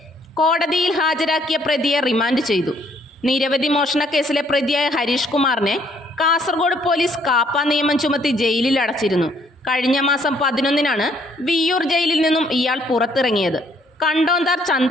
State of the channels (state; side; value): normal; both; correlation 0.66